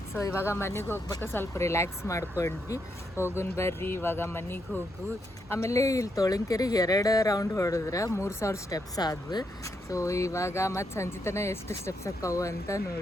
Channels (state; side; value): normal; both; correlation 0.79